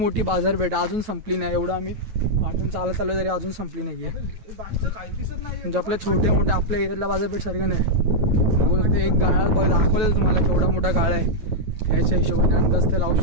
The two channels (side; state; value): left; late; 9.3 ms